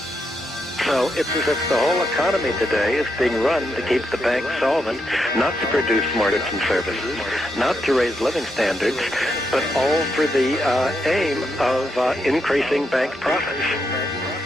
So it's as if the whole economy today is being run to keep the bank solvent, not to produce more goods and services, not to raise living standards, but all for the aim of increasing bank profits.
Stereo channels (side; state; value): both; normal; correlation 0.82